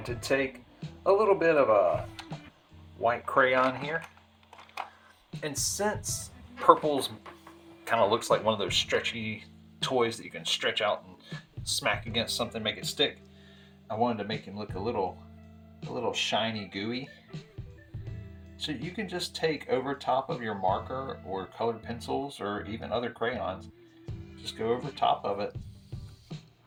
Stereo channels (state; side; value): identical; both; correlation 1.00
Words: to take a little bit of a white crayon here. And since purple's kind of looks like one of those stretchy toys that you can stretch out and smack against something, make it stick, I wanted to make him look a little shiny, gooey. So you can just take over top of your marker or colored pencils or even other crayons, just go over top of it,